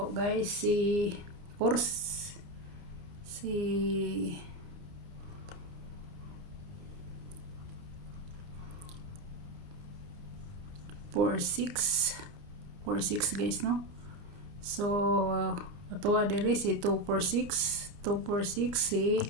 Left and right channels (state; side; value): late; left; 29 ms